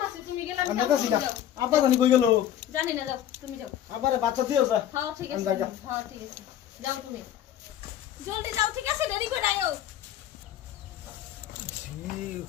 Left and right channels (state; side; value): quieter; right; 11.1 dB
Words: আছে, তুমি গেলাম আমি যাও, যাচ্ছি তুমি গা। যাও। আব্বা জানি কই গেল? জানি না, যাও তুমি যাও। আব্বারে বাচ্চা দিও যা। হ্যাঁ ঠিক আমি আছে, যাই। হ্যাঁ ঠিক আছে, যাও তুমি জলদি যাও, ঠিক আছে? দেরি করে আইও।